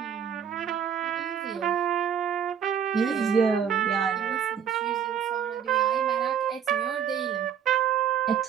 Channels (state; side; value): quieter; left; 8.1 dB